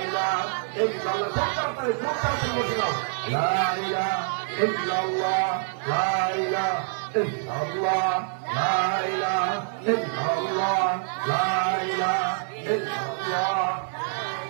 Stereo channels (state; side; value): silent; left; digital silence